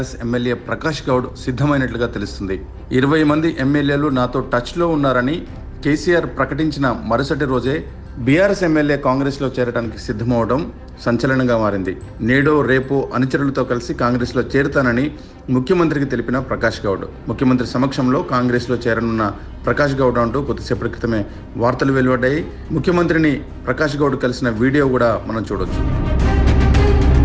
ఎమ్మెల్యే ప్రకాష్ గౌడ్ సిద్ధమైనట్లుగా తెలుస్తుంది. 20 మంది ఎమ్మెల్యేలు నాతో టచ్లో ఉన్నారని కేసీఆర్ ప్రకటించిన మరుసటి రోజే బీఆర్ఎస్ ఎమ్మెల్యే కాంగ్రెస్లో చేరడానికి సిద్ధమవడం సంచలనంగా మారింది. నేడో రేపో అనుచరులతో కలిసి కాంగ్రెస్లో చేరుతానని ముఖ్యమంత్రికి తెలిపిన ప్రకాష్ గౌడ్, ముఖ్యమంత్రి సమక్షంలో కాంగ్రెస్లో చేరనున్న ప్రకాష్ గౌడ్ అంటూ కొద్దిసేపటి క్రితమే వార్తలు వెలువడ్డాయి. ముఖ్యమంత్రిని ప్రకాష్ గౌడ్ కలిసిన వీడియో కూడా మనం చూడొచ్చు.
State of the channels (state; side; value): identical; both; correlation 1.00